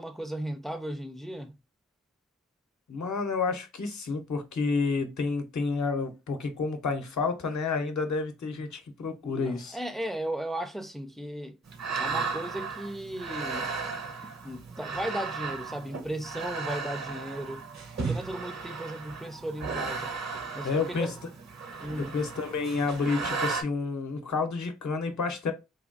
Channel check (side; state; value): both; normal; correlation 0.54